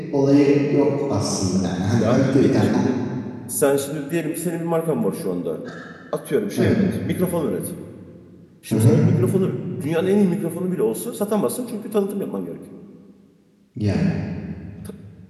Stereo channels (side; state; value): both; identical; correlation 1.00